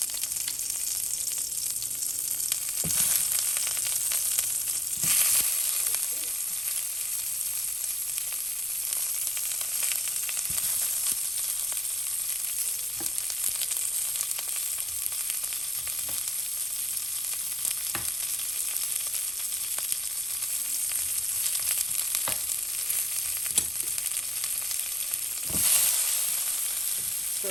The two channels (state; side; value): noise; left; rumble, 30 dB below the sound